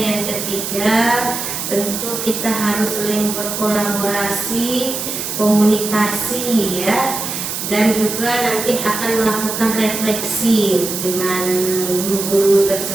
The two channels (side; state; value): right; noise; hiss, 4 dB below the sound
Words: ketiga, tentu kita harus saling berkolaborasi, komunikasi ya, dan juga nanti akan melakukan refleksi dengan guru-guru